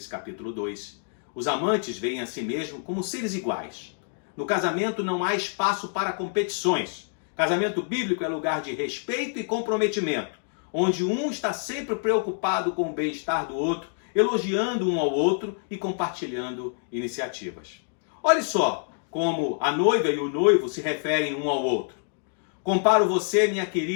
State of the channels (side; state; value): right; silent; 60 dB below the other